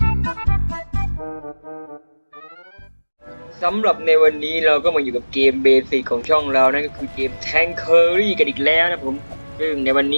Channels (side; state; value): both; inverted; correlation -1.00